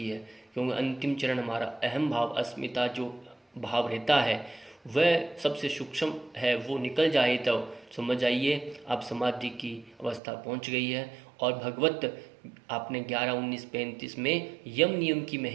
है। क्योंकि अंतिम चरण हमारा अहम भाव, अस्मिता जो भाव रहता है वह सबसे सूक्ष्म है, वो निकल जाए तो समझ जाइए आप समाधि की अवस्था पहुंच गई है। और भगवत आपने 11-19-35 में यम नियम की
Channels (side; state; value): left; drops out; at 10.2 s